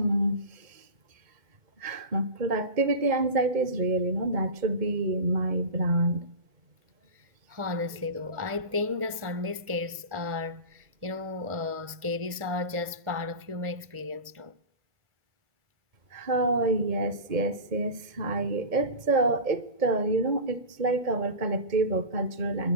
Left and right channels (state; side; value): late; left; 1.4 ms